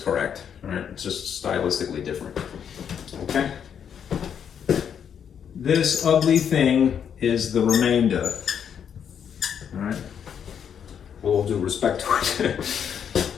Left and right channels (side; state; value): right; quieter; 8.1 dB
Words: all right? It's just stylistically different, okay? This ugly thing is the remainder, all right? With all due respect to it.